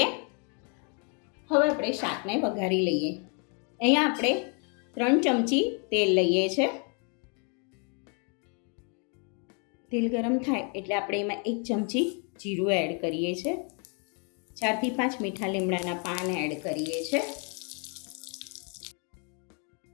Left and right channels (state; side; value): quieter; right; 37.8 dB